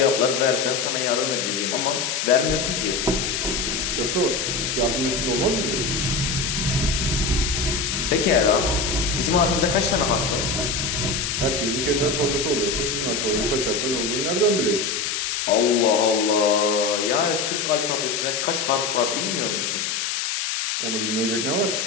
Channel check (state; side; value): noise; left; hiss, 1 dB below the sound